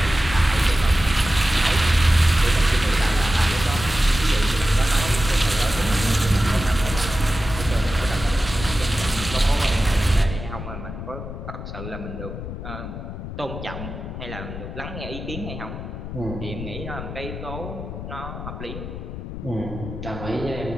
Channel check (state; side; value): noise; left; rumble, 8 dB below the sound